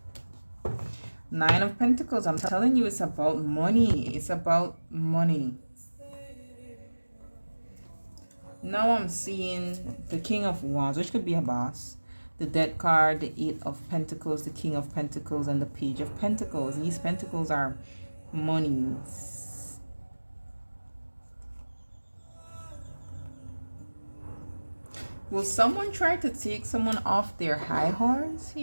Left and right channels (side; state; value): both; inverted; correlation -1.00